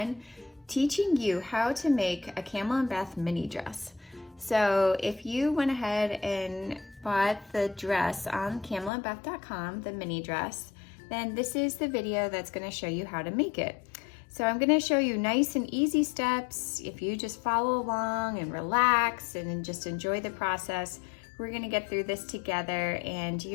teaching you how to make a Camilyn Beth mini dress. So if you went ahead and bought the dress on CamilynBeth.com, the mini dress, then this is the video that's going to show you how to make it. So I'm going to show you nice and easy steps. If you just follow along and relax and just enjoy the process, we're going to get through this together and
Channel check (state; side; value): drops out; right; at 8.9 s